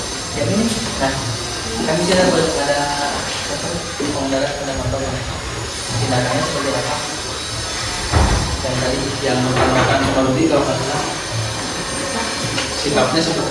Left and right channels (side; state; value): both; identical; correlation 1.00